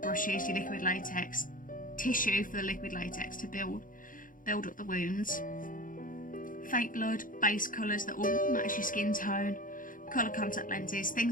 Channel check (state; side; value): late; right; 0.39 ms